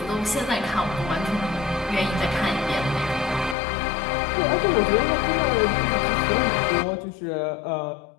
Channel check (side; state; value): right; drops out; at 3.6 s